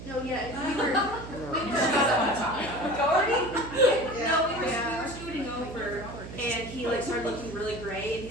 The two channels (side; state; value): right; noise; hum, 12 dB below the sound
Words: No, yeah, we were, Doherty? no, we were And he like started looking really gray, and